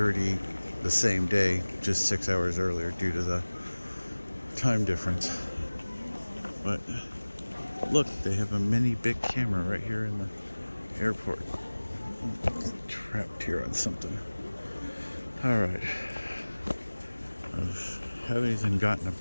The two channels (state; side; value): inverted; both; correlation -1.00